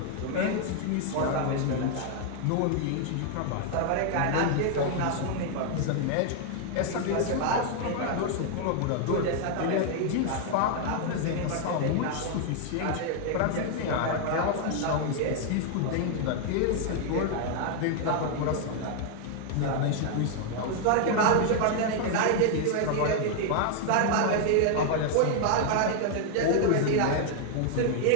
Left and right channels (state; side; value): different; both; correlation 0.00